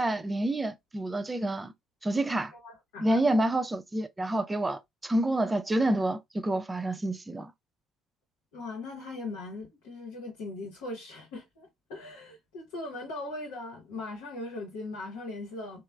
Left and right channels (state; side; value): normal; both; correlation 0.87